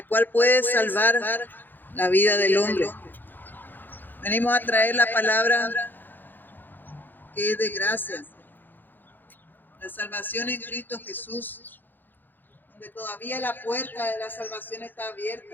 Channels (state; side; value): late; right; 0.090 ms